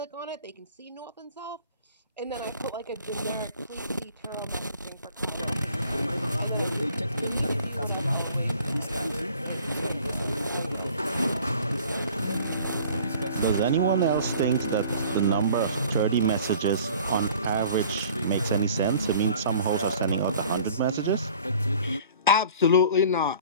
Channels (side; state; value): both; inverted; correlation -0.50